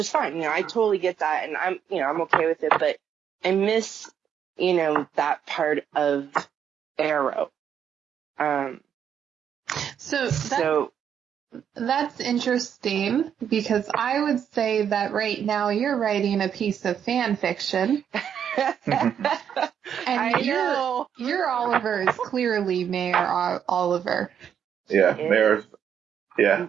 fine. I totally get that, and I'm okay with it, but I miss, that part of Arrow. So that's interesting, because I would say that right now you're writing a piece of fan fiction. And your Oliver is clearly Mayor Oliver. Yeah, Mayor. Yeah,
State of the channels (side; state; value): left; quieter; 8.5 dB